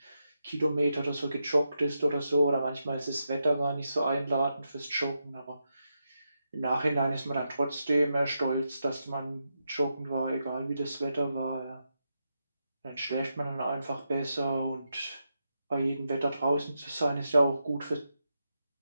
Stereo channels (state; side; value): inverted; both; correlation -0.85